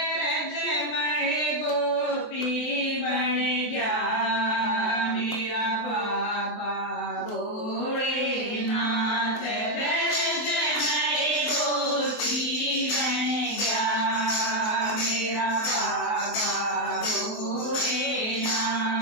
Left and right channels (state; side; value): late; right; 23 ms